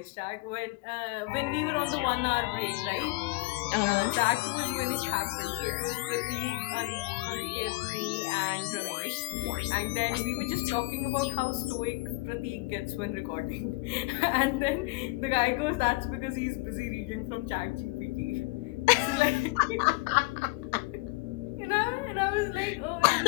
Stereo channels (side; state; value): right; quieter; 23.3 dB